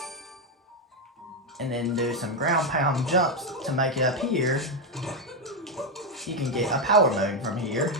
and then do some ground pound jumps to make it up here, you can get a power moon from here.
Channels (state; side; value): normal; both; correlation 0.05